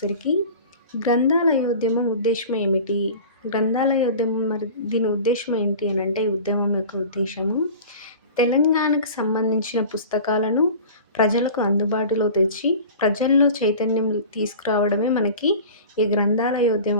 గ్రంథాలయోద్యమం ఉద్దేశం ఏమిటి? గ్రంథాలయోద్యమం మరి దీని ఉద్దేశం ఏంటి అని అంటే, ఈ ఉద్యమం యొక్క ఉద్దేశము తెలంగాణకు సంబంధించిన పుస్తకాలను ప్రజలకు అందుబాటులో తెచ్చి ప్రజల్లో చైతన్యం తీసుకురావడమే మనకి ఈ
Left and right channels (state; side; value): inverted; both; correlation -0.38